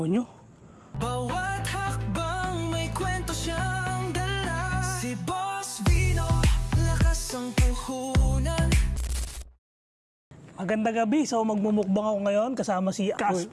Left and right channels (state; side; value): identical; both; correlation 1.00